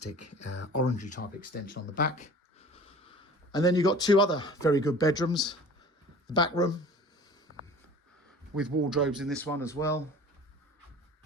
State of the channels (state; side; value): normal; both; correlation 0.43